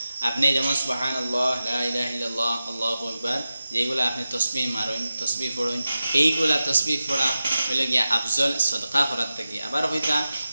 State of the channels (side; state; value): both; inverted; correlation -0.93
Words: আপনি যেমন সুবহানাল্লাহ লা ইলাহা ইল্লাল্লাহ আল্লাহু আকবার যেগুলো আপনি তাসবিহ মারেন তাসবিহ পড়েন এইগুলা তাসবিহ পড়া হইল গিয়া আফজল সাদকা করার থেকে। আবার হইতা